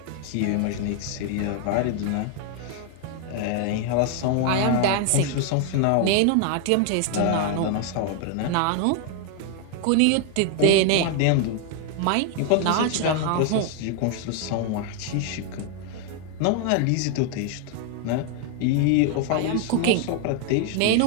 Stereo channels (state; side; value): different; both; correlation 0.00